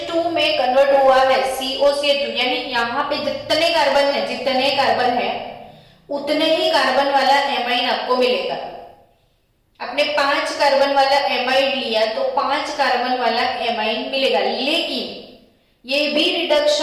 में कन्वर्ट हुआ है, COCH2, यानी यहाँ पे जितने कार्बन है उतने ही कार्बन वाला एमाइन आपको मिलेगा। आपने 5 कार्बन वाला एमाइड लिया तो 5 कार्बन वाला एमाइन मिलेगा, लेकिन ये भी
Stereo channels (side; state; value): both; identical; correlation 1.00